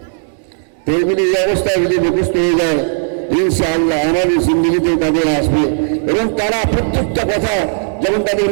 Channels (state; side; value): silent; left; digital silence